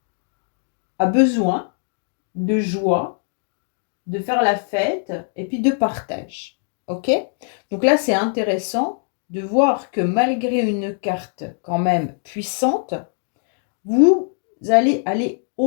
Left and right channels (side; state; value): right; silent; digital silence